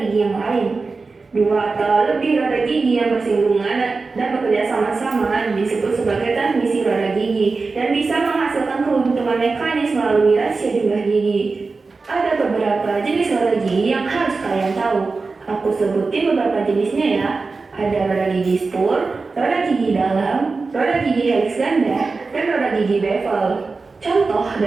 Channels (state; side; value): quieter; left; 4.1 dB